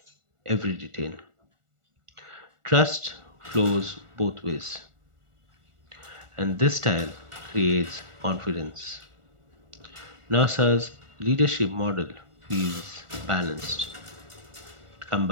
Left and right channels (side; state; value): left; late; 1.4 ms